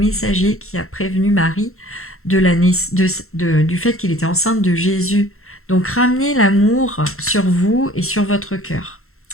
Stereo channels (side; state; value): right; late; 0.62 ms